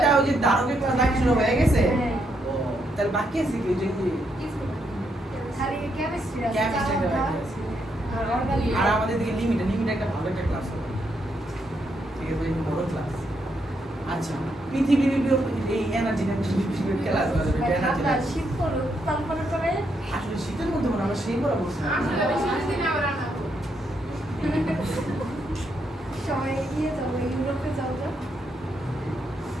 ওই যে ধারকের ক্লাস দেখা শুরু হয়ে গেছে। ও তাহলে বাকি আছে কি ওই যে খালি কেমিস্ট্রি আছে Chemistry টা বাকি আছে। আর অর্গানিক আর আমাদের দিকে লিমিট একটা ভালো একটা ক্লাস হবে। ঠিক আছে এই বড় ক্লাস। আচ্ছা পৃথিবীর এই এনার্জি ক্লাস হবে এনার্জি। ঠান্ডা শীত পড়লো তারপরে করে আসলে শীতের মধ্যে মনে হয় আমরা সেই পড়া বলছি সবাই গিয়ে যাবো ইউরোপে যাও তো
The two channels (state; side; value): normal; both; correlation 0.78